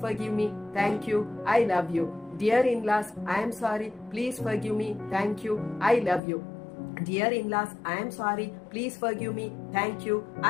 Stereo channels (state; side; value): drops out; right; at 6.2 s